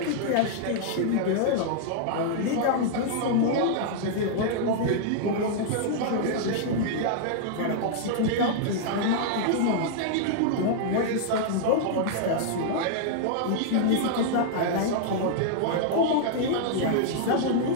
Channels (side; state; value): both; different; correlation -0.01